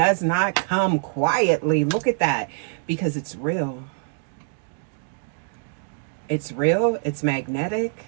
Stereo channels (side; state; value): left; silent; digital silence